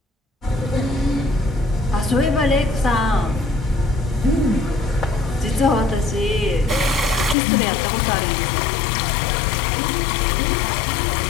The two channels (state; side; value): drops out; right; at 7.4 s